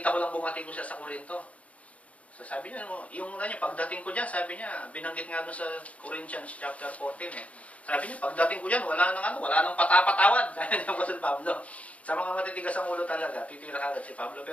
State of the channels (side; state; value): right; late; 0.066 ms